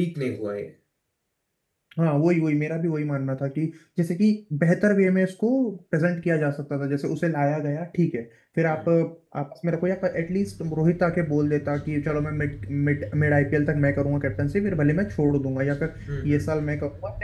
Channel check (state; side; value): identical; both; correlation 1.00